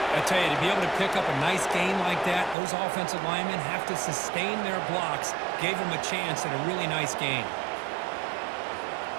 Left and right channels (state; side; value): drops out; left; at 2.6 s